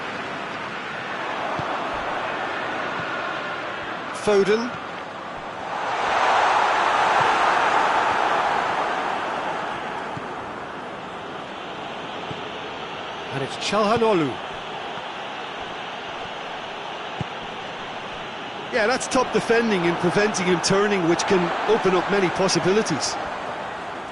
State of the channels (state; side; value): identical; both; correlation 1.00